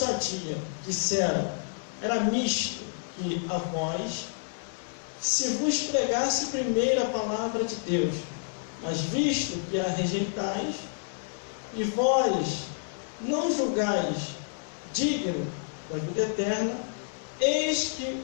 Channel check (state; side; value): silent; right; digital silence